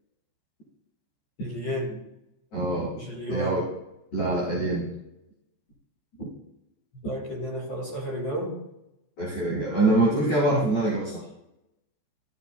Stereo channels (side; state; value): right; late; 14 ms